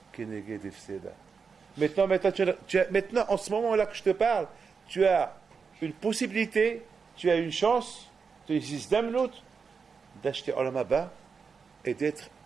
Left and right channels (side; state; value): left; quieter; 5.5 dB